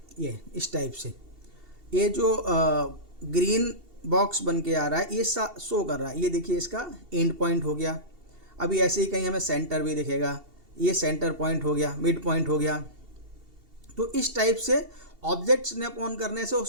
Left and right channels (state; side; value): late; left; 2.7 ms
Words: ये इस टाइप से ये जो ग्रीन बॉक्स बन के आ रहा है ये शो कर रहा है। ये देखिए इसका एंड पॉइंट हो गया। अभी ऐसे ही कहीं हमें सेंटर भी दिखेगा, ये सेंटर पॉइंट हो गया, मिड पॉइंट हो गया। तो इस टाइप से ऑब्जेक्ट स्नैप ऑन करने से